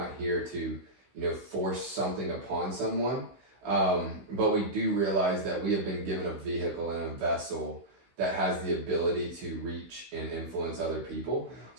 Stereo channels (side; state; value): left; late; 16 ms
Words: here to, force something upon someone. But we do realize that we have been given a vehicle and a vessel that has the ability to reach and influence other people.